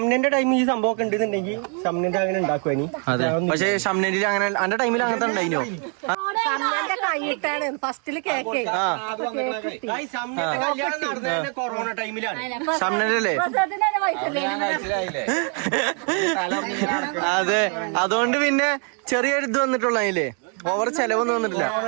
ടൈമിൽ ഈ സംഭവം ഒക്കെ ഉണ്ടെന്നുണ്ടെങ്കിൽ ഷംനന്റെ അങ്ങനെ ഉണ്ടാക്കുവാനി. അതെ, പക്ഷെ ഷംനന്റെ അങ്ങനെ അന്റെ ടൈമിൽ അങ്ങനത്തെ ഉണ്ടായിനോ? കൈയിട്ടാണ് ഫസ്റ്റില് കേക്ക്. ഷംനന്റെ കല്യാണം നടന്നത് കൊറോണ ടൈമിലാണ്. ഷംനല്ലേ? അതെ, അതുകൊണ്ട് പിന്നെ ചെറിയൊരു ഇത് വന്നിട്ടുള്ള അതിലേ ഓവർ ചെലവൊന്നും വന്നിട്ടില്ല.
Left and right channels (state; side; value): quieter; left; 39.9 dB